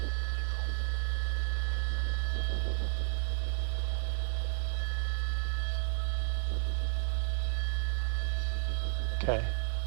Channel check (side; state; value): left; silent; 56 dB below the other